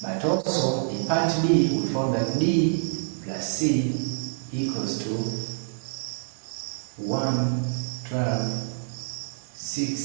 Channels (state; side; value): silent; left; digital silence